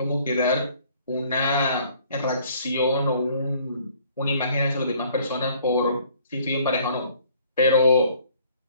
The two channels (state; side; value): inverted; both; correlation -0.58